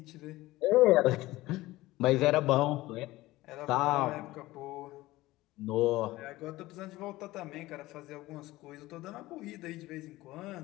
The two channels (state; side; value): quieter; right; 18.1 dB